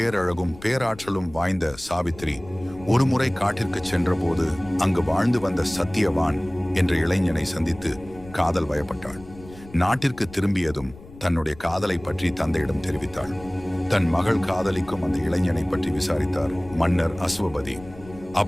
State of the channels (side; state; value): left; noise; rumble, 19 dB below the sound